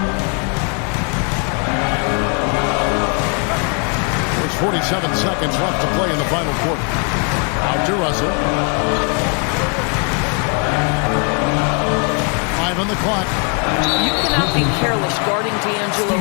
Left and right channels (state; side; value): quieter; right; 38.6 dB